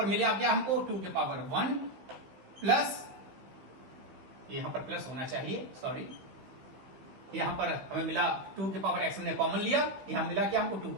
मिला क्या हमको? 2 के पावर 1 प्लस, यहां पर प्लस होना चाहिए, सॉरी, यहां पर हमें मिला 2 के पावर x हमने कॉमन लिया, यहां मिला क्या हमको? 2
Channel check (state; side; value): late; left; 16 ms